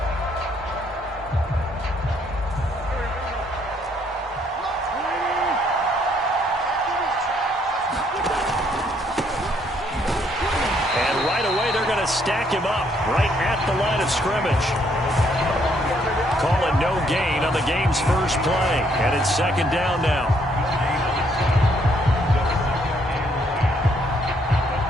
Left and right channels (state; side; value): normal; both; correlation 0.69